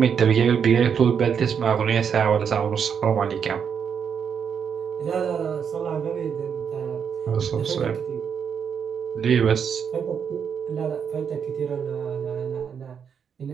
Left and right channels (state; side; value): quieter; left; 7.2 dB